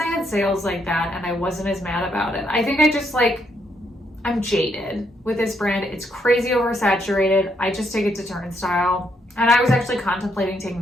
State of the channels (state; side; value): normal; both; correlation 0.75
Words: had sales like that and I wasn't as mad about it. I think I just I'm jaded with this brand. It's crazy oversaturated. I just take it to turnstile. And I was actually contemplating taking